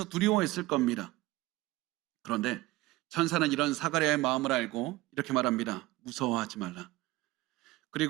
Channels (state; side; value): quieter; left; 19.0 dB